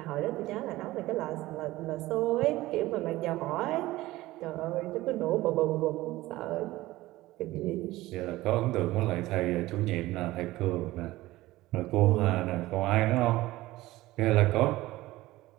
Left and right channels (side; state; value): left; quieter; 17.7 dB